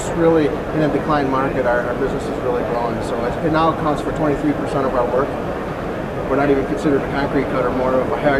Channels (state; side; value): identical; both; correlation 1.00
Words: really in a decline market. Our business is really growing, so it now accounts for 23% of our work. We're not even considered a concrete cutter, more of a